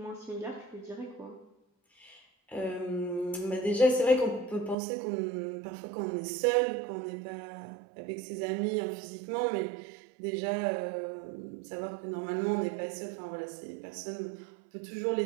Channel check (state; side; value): drops out; left; at 4.8 s